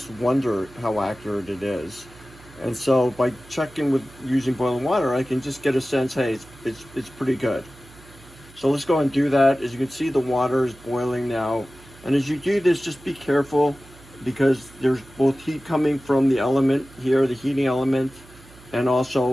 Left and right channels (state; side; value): noise; right; hum, 23 dB below the sound